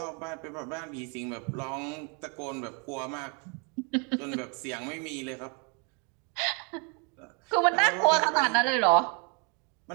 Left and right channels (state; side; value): quieter; left; 35.4 dB